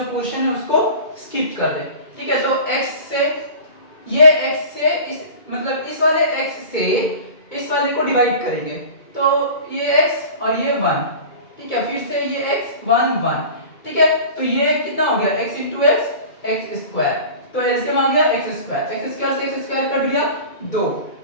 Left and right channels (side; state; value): right; late; 2.2 ms